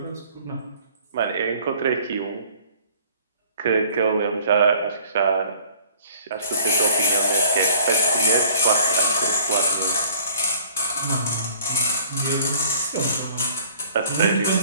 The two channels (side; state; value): both; inverted; correlation -0.51